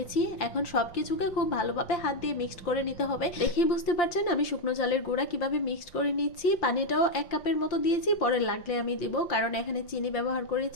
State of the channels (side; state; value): right; late; 5.7 ms